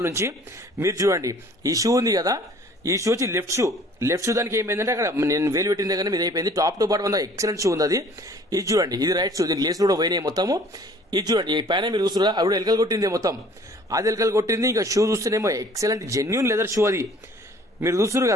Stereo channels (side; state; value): both; normal; correlation 0.53